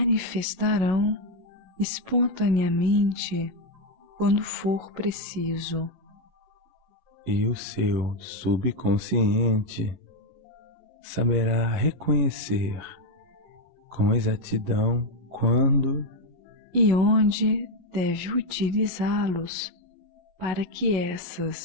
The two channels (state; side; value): late; left; 11 ms